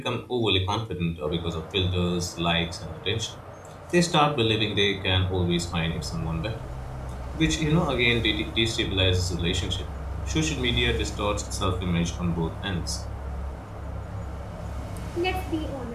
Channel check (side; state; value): both; identical; correlation 1.00